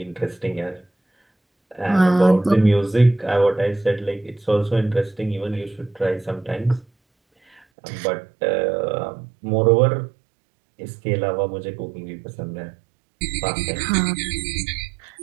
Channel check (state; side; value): drops out; left; at 7.6 s